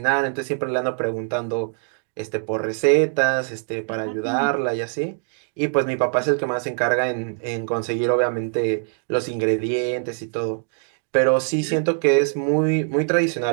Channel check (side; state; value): left; silent; digital silence